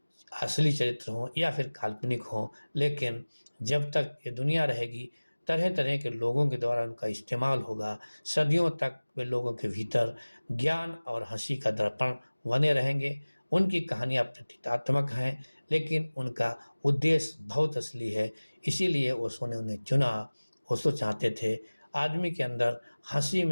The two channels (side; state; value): both; inverted; correlation -1.00